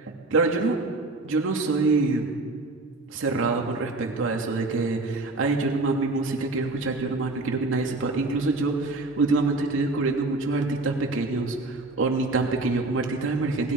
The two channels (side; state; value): left; quieter; 3.1 dB